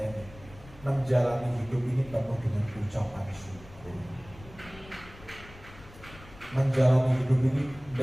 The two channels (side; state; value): left; noise; rumble, 19 dB below the sound